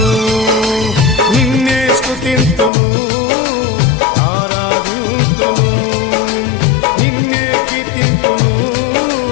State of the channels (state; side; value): drops out; right; at 2.7 s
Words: నిన్నే స్తుతింతును ఆరాధింతును నిన్నే కీర్తింతును